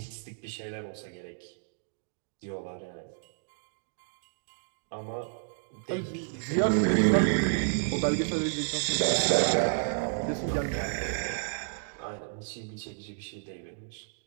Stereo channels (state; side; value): silent; left; digital silence